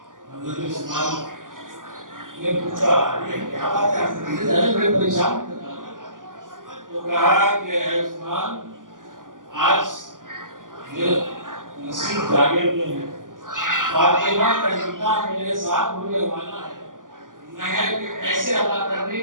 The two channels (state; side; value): late; left; 0.89 ms